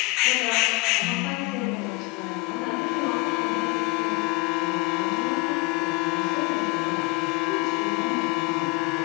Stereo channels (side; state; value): right; quieter; 24.3 dB